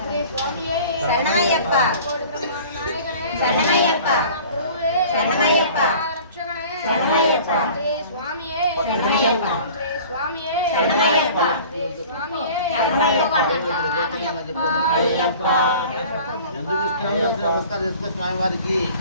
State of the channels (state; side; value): inverted; both; correlation -0.45